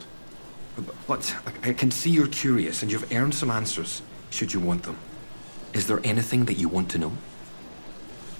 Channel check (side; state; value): both; inverted; correlation -1.00